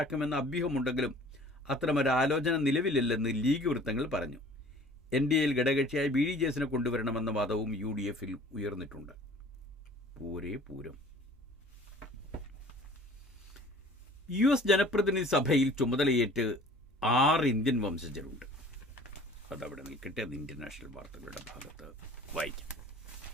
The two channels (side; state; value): both; normal; correlation 0.49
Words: അഭ്യൂഹമുണ്ടെങ്കിലും അത്തരമൊരു ആലോചന നിലവിലില്ലെന്ന് ലീഗ് വൃത്തങ്ങൾ പറഞ്ഞു. NDAയിൽ ഘടകകക്ഷിയായ BDJSനെ കൊണ്ടുവരണമെന്ന വാദവും UDFിൽ ഉയർന്നിട്ടുണ്ട്. പൂരം. US ജനപ്രതിനിധി സഭയിൽ ചുമതലയേറ്റ് 6 ഇന്ത്യൻ വംശജരുണ്ട്. അതവിടെ നിൽക്കട്ടെ, അത് ഇന്റർനാഷണൽ വാർത്തകളുടെ ഭാഗത്ത് വായിക്കാം.